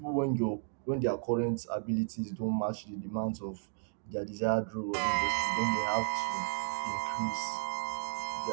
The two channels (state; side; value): silent; left; digital silence